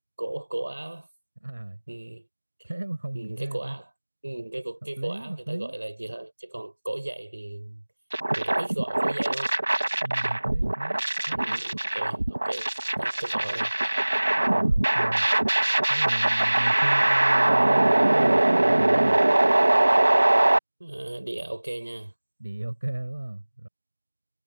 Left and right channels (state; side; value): inverted; both; correlation -1.00